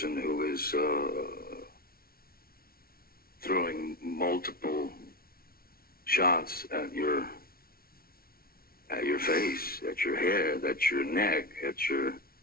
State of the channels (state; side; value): late; right; 0.44 ms